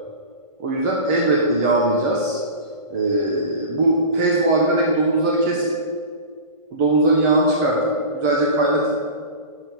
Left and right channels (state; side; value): late; left; 1.5 ms